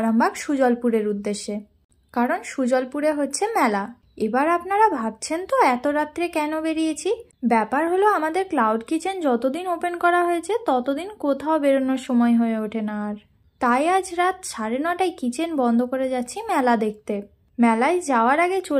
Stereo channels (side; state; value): both; identical; correlation 1.00